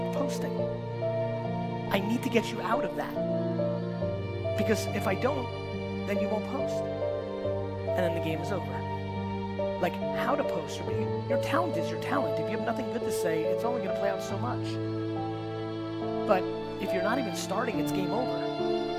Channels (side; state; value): both; identical; correlation 1.00